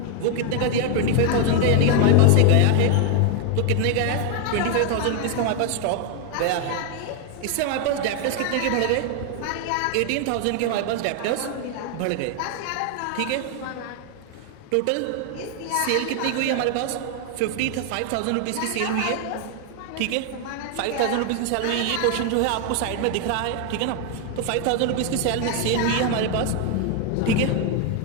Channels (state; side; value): different; both; correlation 0.01